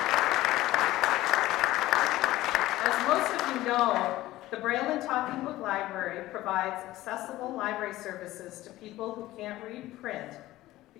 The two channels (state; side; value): quieter; right; 16.4 dB